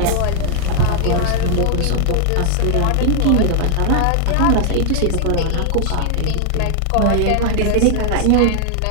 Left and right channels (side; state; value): both; different; correlation 0.00